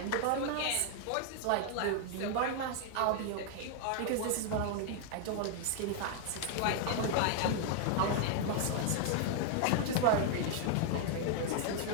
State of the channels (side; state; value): both; different; correlation 0.00